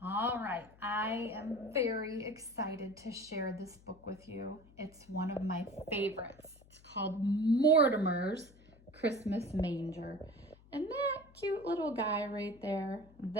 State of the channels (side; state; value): left; noise; hum, 25 dB below the sound